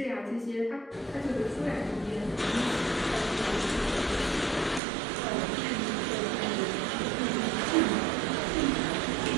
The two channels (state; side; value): drops out; left; at 4.8 s